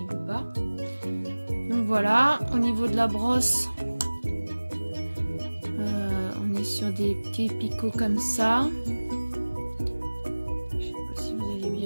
veut pas. Donc voilà, au niveau de la brosse, on est sur des petits picots comme ça. Je sais pas si vous allez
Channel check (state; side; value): inverted; both; correlation -1.00